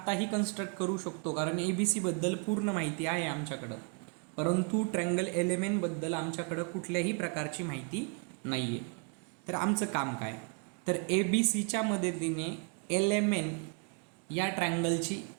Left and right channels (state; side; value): quieter; left; 36.3 dB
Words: कन्स्ट्रक्ट करू शकतो, कारण ABCबद्दल पूर्ण माहिती आहे आमच्याकडं. परंतु ट्रायंगल LMN बद्दल आमच्याकडं कुठल्याही प्रकारची माहिती नाही आहे. तर आमचं काम काय, तर ABCच्या मदतीने LMN या ट्रायंगलची